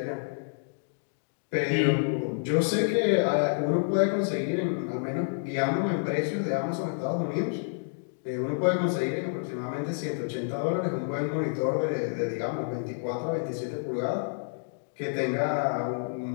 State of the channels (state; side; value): silent; right; digital silence